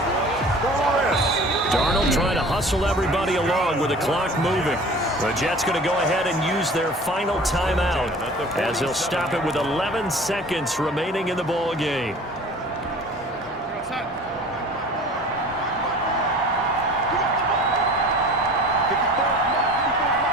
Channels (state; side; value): normal; both; correlation 0.43